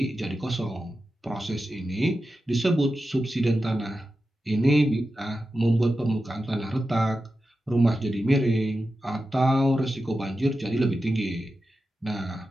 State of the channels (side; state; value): both; normal; correlation 0.91